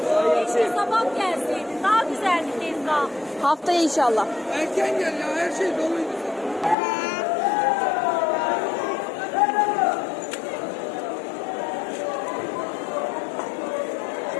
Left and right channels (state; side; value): drops out; right; at 6.8 s